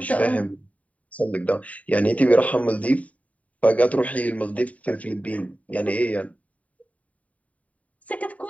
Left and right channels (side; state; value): right; late; 0.069 ms